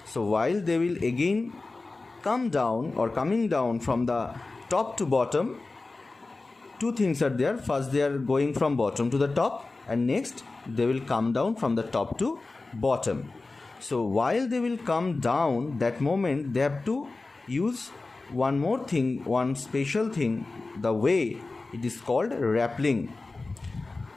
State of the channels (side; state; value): right; quieter; 3.5 dB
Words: So while they will again come down or coming down from the top to bottom, two things are there. First, they are going from bottom to the top, and next they will come down from the top to bottom. So while they will come down, that moment they have to use one more thing, one special thing, the way it is called rappelling.